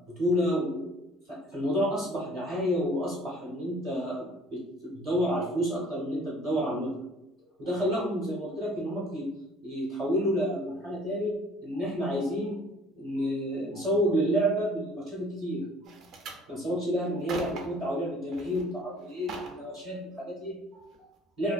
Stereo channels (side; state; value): both; normal; correlation 0.54